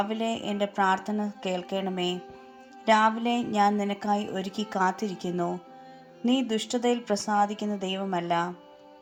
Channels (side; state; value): both; identical; correlation 1.00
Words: എൻ്റെ പ്രാർത്ഥന കേൾക്കണമേ. രാവിലെ ഞാൻ നിനക്കായി ഒരുക്കി കാത്തിരിക്കുന്നു. നീ ദുഷ്ടതയിൽ പ്രസാദിക്കുന്ന ദൈവമല്ല,